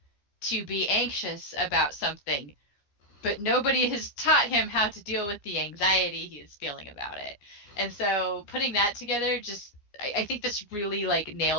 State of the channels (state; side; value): late; right; 14 ms